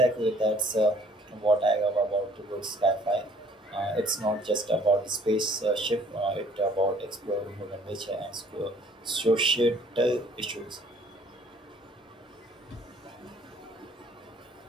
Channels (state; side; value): normal; both; correlation 0.57